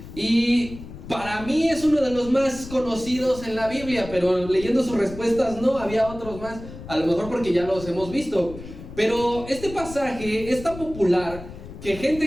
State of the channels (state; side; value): noise; left; rumble, 14 dB below the sound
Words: y para mí es uno de los más conocidos en la Biblia, pero leyendo sus respuestas no, había otros más, a lo mejor porque ya los hemos visto. Pero este pasaje es tan popular que